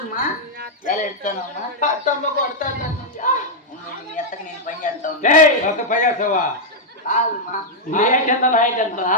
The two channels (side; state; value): both; normal; correlation -0.03